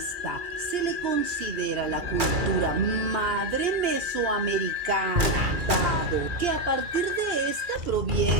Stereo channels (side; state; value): left; late; 2.3 ms